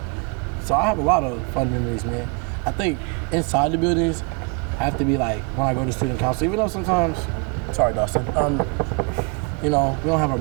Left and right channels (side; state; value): left; quieter; 32.8 dB